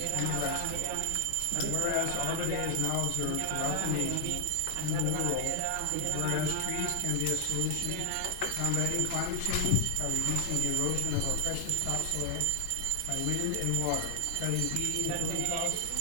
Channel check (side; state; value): both; different; correlation 0.00